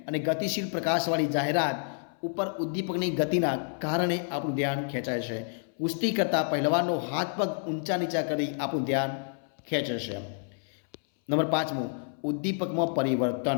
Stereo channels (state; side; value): silent; right; 58 dB below the other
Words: અને ગતિશીલ પ્રકાશવાળી જાહેરાત ઉપર ઉદ્દીપકની ગતિના કારણે આપણું ધ્યાન ખેંચાય છે. કુસ્તી કરતા પહેલવાનનો હાથ પગ ઊંચા નીચા કરી આપણું ધ્યાન ખેંચે છે. નંબર 5, ઉદ્દીપકમાં